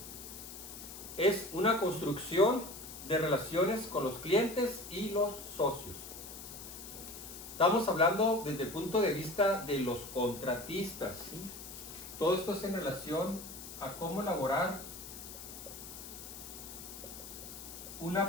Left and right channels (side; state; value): left; noise; hiss, 12 dB below the sound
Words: es una construcción de relaciones con los clientes y los socios. Estamos hablando desde el punto de vista de los contratistas, ¿sí? Todo esto es en relación a cómo elaborar